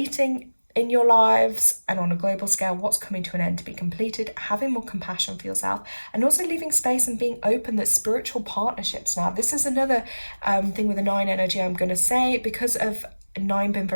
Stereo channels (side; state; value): both; inverted; correlation -1.00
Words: in your lives, and on a global scale, what's coming to an end to be completed, having more compassion for yourself, and also leaving space and being open that spiritual partnerships. Now, this is another thing with the 9 energy I'm going to say, because of nine been